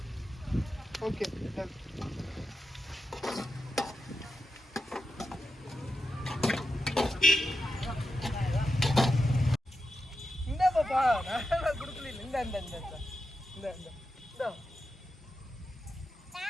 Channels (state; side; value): normal; both; correlation 0.90